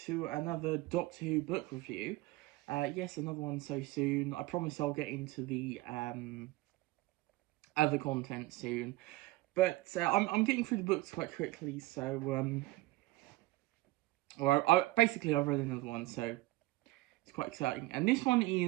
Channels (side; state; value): left; quieter; 19.1 dB